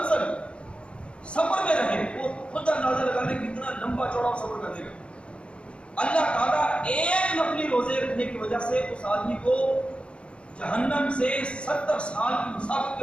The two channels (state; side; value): late; right; 0.058 ms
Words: سفر میں رہے، وہ خود اندازہ لگا لے کتنا لمبا چوڑا سفر کر دے گا. اللہ تعالیٰ ایک نفلی روزے رکھنے کی وجہ سے اس آدمی کو جہنم سے 70 سال کی مسافت